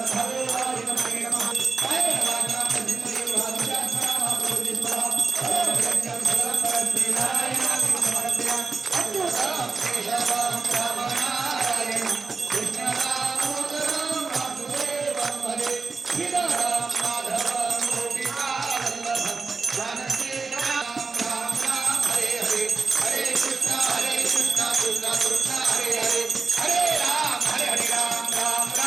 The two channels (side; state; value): left; quieter; 4.4 dB